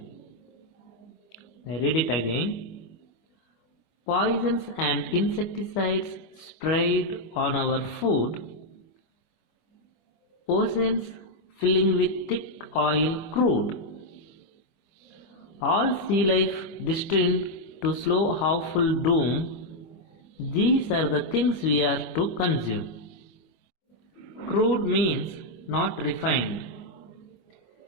I read it again. Poisons and insecticides sprayed on our food, oceans filling with thick oil crude, all sea life destined to slow awful doom, these are the things we are to consume. Crude means not refined.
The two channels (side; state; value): right; late; 25 ms